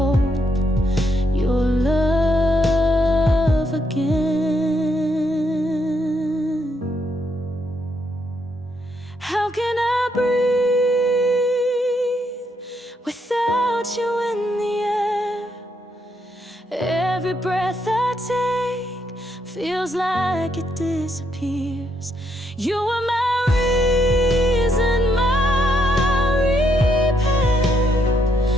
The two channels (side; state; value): both; normal; correlation 0.76